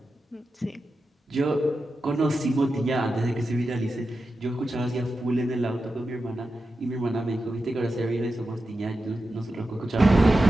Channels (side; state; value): both; normal; correlation 0.91